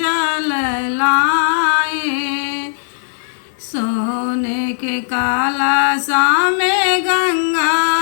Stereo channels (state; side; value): silent; right; digital silence